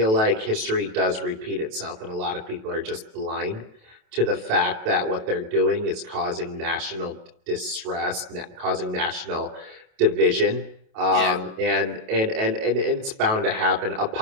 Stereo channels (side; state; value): left; late; 28 ms